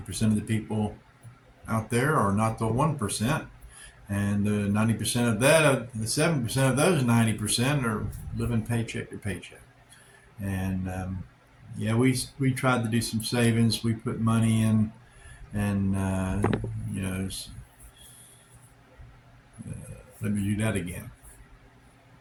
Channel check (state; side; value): identical; both; correlation 1.00